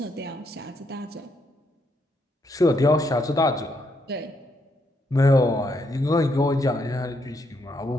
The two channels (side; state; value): both; normal; correlation 0.76